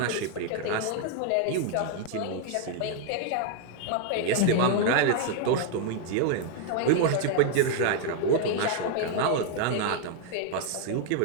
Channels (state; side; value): different; both; correlation 0.00